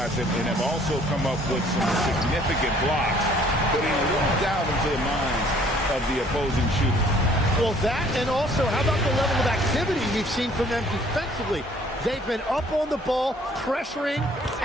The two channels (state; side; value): normal; both; correlation 0.58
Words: and have also come up with some significant blocks, putting a little doubt into the minds of the opposing shooter. Well, that and also, how about the level of activity we've seen from them defensively? They've been up on the ball, pressuring,